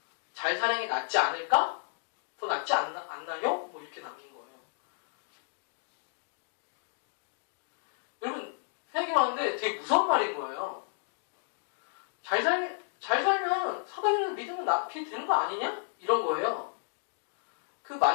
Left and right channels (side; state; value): right; silent; digital silence